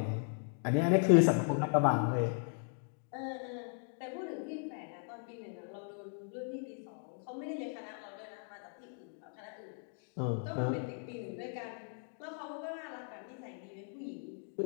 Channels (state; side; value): silent; right; 53 dB below the other